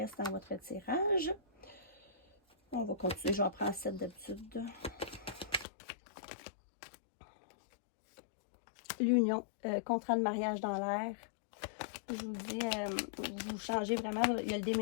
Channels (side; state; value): right; drops out; at 5.7 s